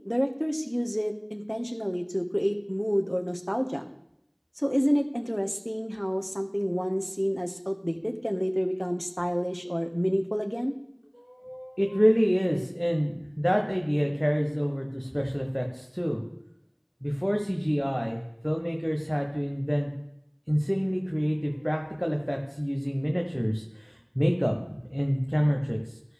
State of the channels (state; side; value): identical; both; correlation 1.00